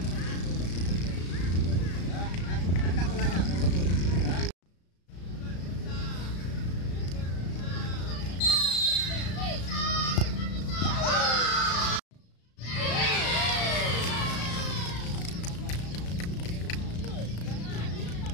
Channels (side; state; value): right; late; 35 ms